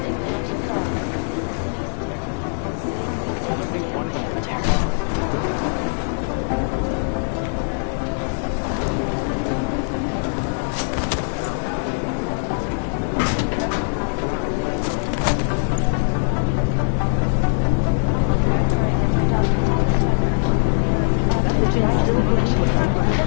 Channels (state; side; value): silent; right; 65 dB below the other